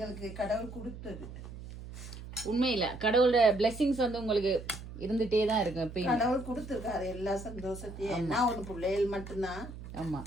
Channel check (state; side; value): noise; right; hum, 12 dB below the sound